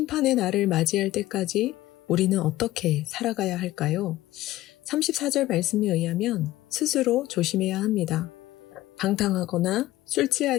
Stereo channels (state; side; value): quieter; right; 16.2 dB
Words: 날을 맞이할 때까지 우리는 어떻게 살아가야 할까요? 34절 말씀에 의하면 스스로 조심해야 합니다. 방탕하거나 술